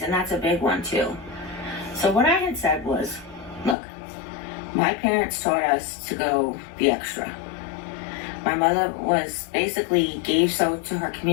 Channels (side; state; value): right; drops out; at 3.8 s